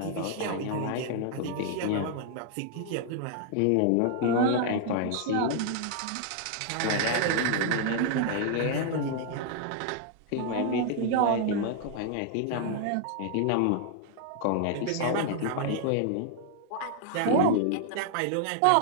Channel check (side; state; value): both; different; correlation 0.00